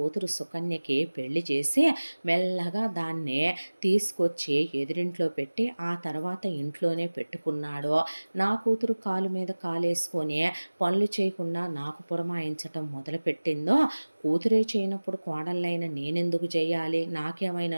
సుకన్యకి పెళ్లి చేసి మెల్లగా దాన్ని తీసుకొచ్చి ఎదురింట్లో పెట్టి ఆ తర్వాత ఇంట్లోనే పెట్టుకున్నాడో, నా కూతురు కాలు మీద కాలేసుకొని పనులు చేయకుండా నాకు పురమాయించటం మొదలుపెట్టిందో, కూతురే చేయనప్పుడు కోడళ్ళైన నేనెందుకు చేయాలి, నాకేమైనా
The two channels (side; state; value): both; inverted; correlation -1.00